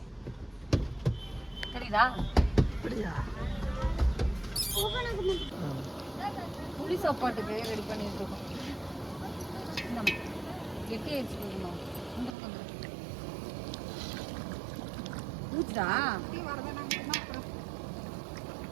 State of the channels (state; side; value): drops out; left; at 12.4 s